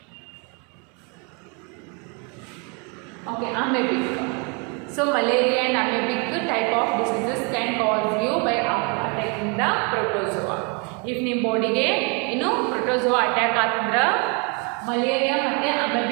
okay, amoebic. So malaria and amoebic type of diseases can cause you by attacking the protozoa. If ನಿಮ್ಮ ಬಾಡಿಗೆ ಏನು protozoa attack ಆತಂದ್ರ malaria ಮತ್ತೆ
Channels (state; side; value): quieter; left; 34.0 dB